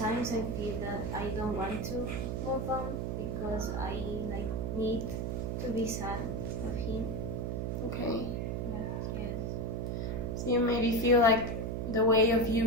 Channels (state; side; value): noise; right; hum, 2 dB below the sound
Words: I feel that I don't want to move on because I need to be sad of him. Okay. But yes. So you maybe feel like the way of